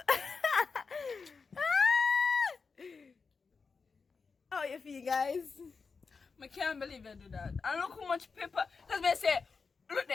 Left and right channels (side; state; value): right; quieter; 4.9 dB